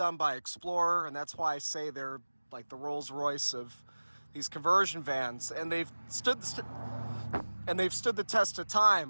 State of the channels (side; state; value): both; inverted; correlation -1.00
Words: by Explorer, and that's why I say they're like the Rolls Royce of these conversion vans. And they've stood the test of